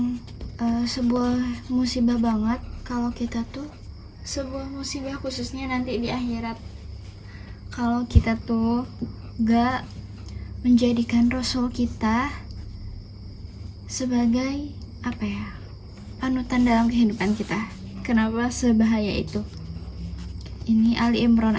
sebuah musibah banget kalau kita tuh sebuah musibah khususnya nanti di akhirat. Kalau kita tuh gak menjadikan Rasul kita sebagai panutan dalam kehidupan kita. Kenapa sebahaya itu? Ini Ali Imran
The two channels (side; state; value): both; identical; correlation 1.00